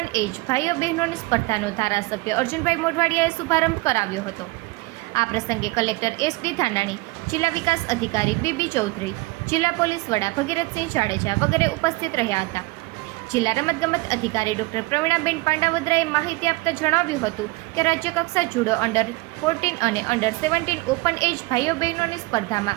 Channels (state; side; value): quieter; left; 22.9 dB